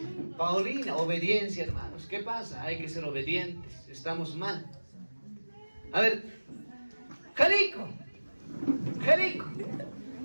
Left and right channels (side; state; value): both; inverted; correlation -1.00